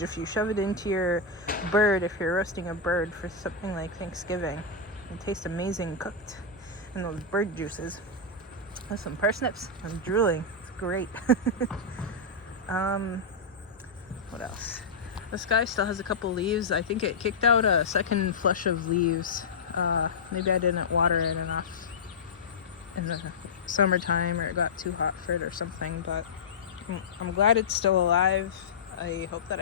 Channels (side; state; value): right; quieter; 3.8 dB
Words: if you shove it into your bird, if you're roasting a bird for something like Thanksgiving, it tastes amazing cooked in those bird juices. With some parsnips. I'm drooling. It's great. What else? The sky still has a couple leaves. I think it kicked out a second flush of leaves. Maybe I didn't water it enough in the summertime, or it got too hot for it or something, but I'm glad it's still alive. I hope that